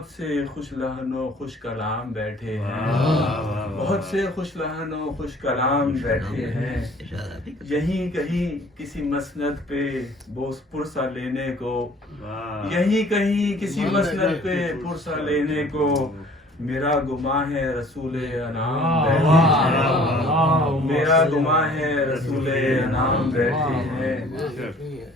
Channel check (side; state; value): both; normal; correlation 0.53